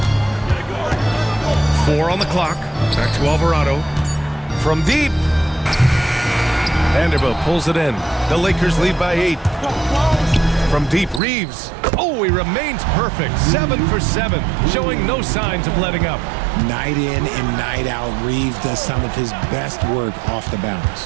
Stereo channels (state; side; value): drops out; left; at 11.2 s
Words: 4 on the clock. Back to Alvarado. From deep. Vanderbilt pulls it in. The Lakers lead by 8. From deep, Reeves. Oh, he remains perfect. 7 for 7, showing no signs of letting up. Night in and night out, Reeves does some of his best work off the bounce.